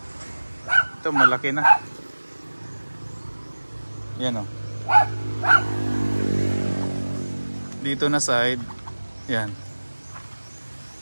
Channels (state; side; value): inverted; both; correlation -1.00